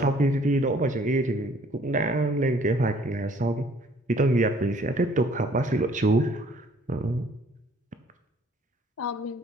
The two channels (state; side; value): normal; both; correlation 0.58